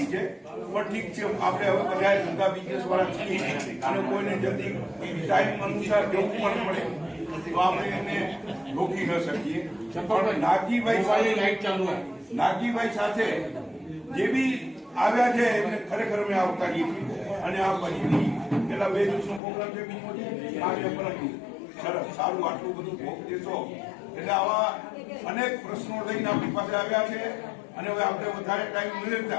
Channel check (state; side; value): drops out; right; at 19.4 s